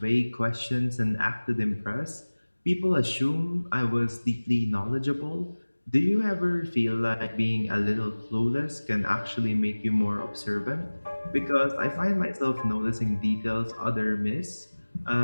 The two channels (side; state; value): both; inverted; correlation -1.00